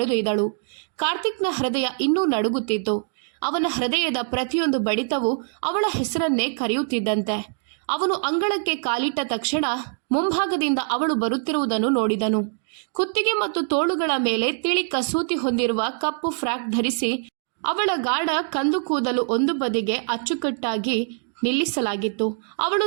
ಕಾರ್ತಿಕ್ನ ಹೃದಯ ಇನ್ನೂ ನಡುಗುತ್ತಿತ್ತು. ಅವನ ಹೃದಯದ ಪ್ರತಿಯೊಂದು ಬಡಿತವೂ ಅವಳ ಹೆಸರನ್ನೇ ಕರೆಯುತ್ತಿದ್ದಂತೆ. ಅವನು ಅಂಗಳಕ್ಕೆ ಕಾಲಿಟ್ಟ ತಕ್ಷಣ ಮುಂಭಾಗದಿಂದ ಅವಳು ಬರುತ್ತಿರುವುದನ್ನು ನೋಡಿದನು. ಕುತ್ತಿಗೆ ಮತ್ತು ತೋಳುಗಳ ಮೇಲೆ ತಿಳಿ ಕಸೂತಿ ಹೊಂದಿರುವ ಕಪ್ಪು ಫ್ರಾಕ್ ಧರಿಸಿ ಅವಳ ಗಾಢ ಕಂದು ಕೂದಲು ಒಂದು ಬದಿಗೆ ಅಚ್ಚುಕಟ್ಟಾಗಿ ನಿಲ್ಲಿಸಲಾಗಿತ್ತು. ಅವಳು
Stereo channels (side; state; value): left; silent; 63 dB below the other